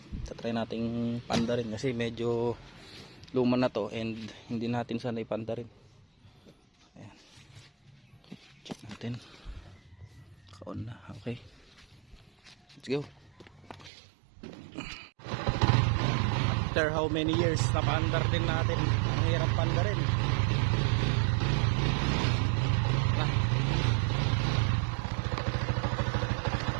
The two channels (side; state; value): left; drops out; at 13.9 s